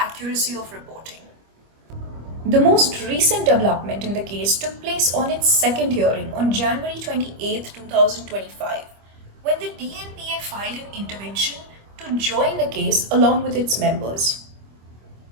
of reporting. The most recent development in the case took place on its second hearing on January 28, 2025, when the DNPA filed an intervention to join the case along with its members.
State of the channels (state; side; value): late; left; 25 ms